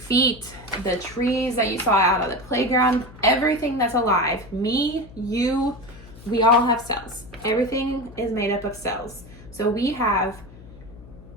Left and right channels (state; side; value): noise; left; hum, 19 dB below the sound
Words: the trees that you saw out on the playground, everything that's alive, me, you, we all have cells. Everything is made up of cells. So we have